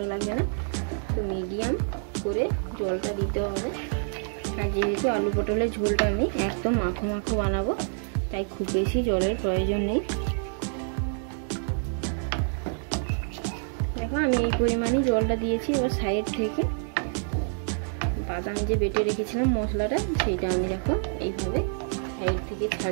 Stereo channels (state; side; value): silent; left; 60 dB below the other